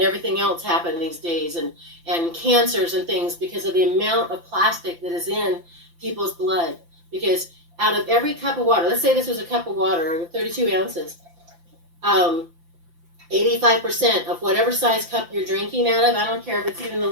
everything else happen these days, and cancers and things because of the amount of plastic that is in people's blood. Because out of every cup of water, let's say this was a cup of water, 32 ounces, 85% of whatever size cup you're drinking out of, I don't care if it's even the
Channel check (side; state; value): left; late; 5.8 ms